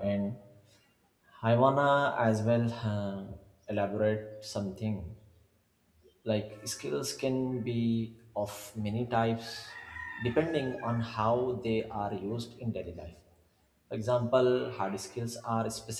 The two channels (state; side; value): identical; both; correlation 1.00